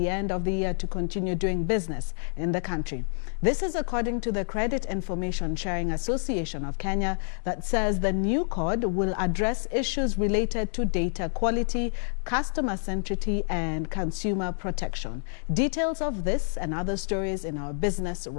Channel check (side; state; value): right; silent; digital silence